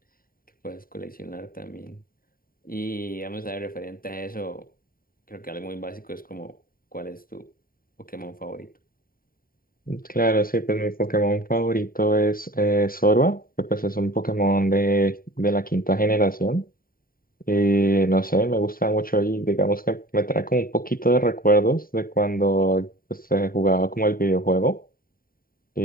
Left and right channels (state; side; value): late; right; 0.42 ms